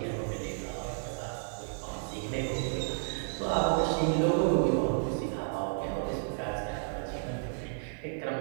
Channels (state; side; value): silent; left; digital silence